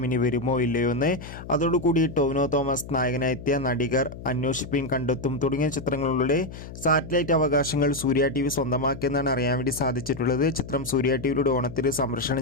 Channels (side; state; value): left; noise; hum, 13 dB below the sound